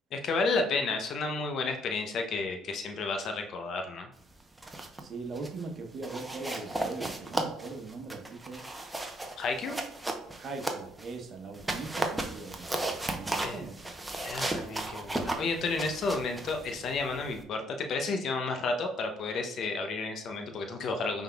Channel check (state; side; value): normal; both; correlation 0.70